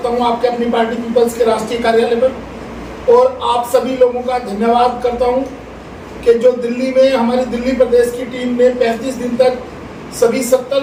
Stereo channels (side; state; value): both; identical; correlation 1.00